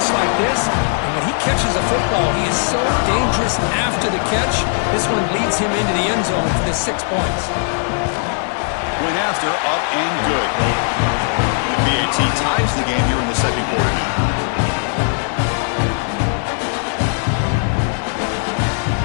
like this. And when he catches a football, he is so dangerous after the catch. This one leads him into the end zone for the 6 points. Point after, up and good. The BAT ties the game here in the second quarter now.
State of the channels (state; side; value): silent; right; 57 dB below the other